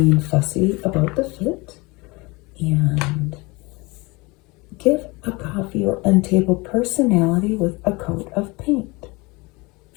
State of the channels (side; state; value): right; quieter; 25.1 dB